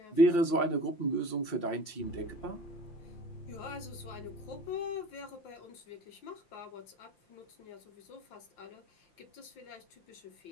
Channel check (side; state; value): right; late; 5.8 ms